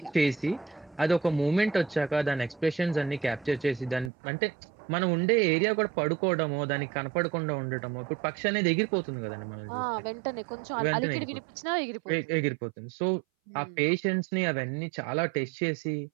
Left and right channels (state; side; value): drops out; left; at 4.1 s